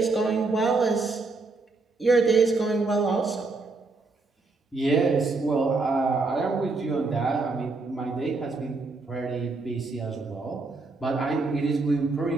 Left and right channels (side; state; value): left; quieter; 3.7 dB